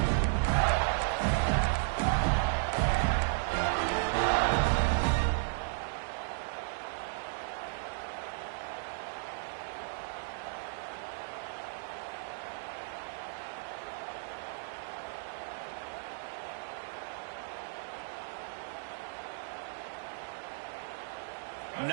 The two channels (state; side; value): silent; left; digital silence